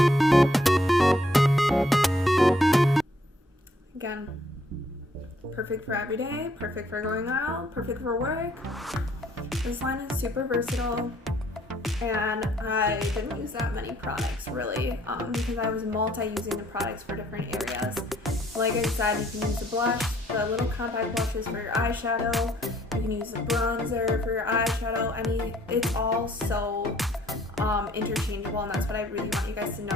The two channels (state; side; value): normal; both; correlation 0.65